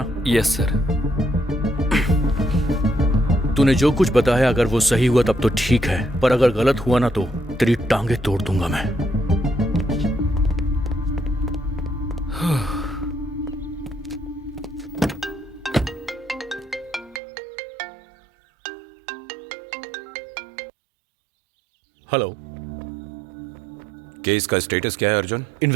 Yes sir. तूने जो कुछ बताया अगर वो सही हुआ तब तो ठीक है, पर अगर गलत हुआ ना तो तेरी टांगे तोड़ दूंगा मैं। हेलो, केस का स्टेटस क्या है Arjun?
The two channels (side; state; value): left; drops out; at 17.2 s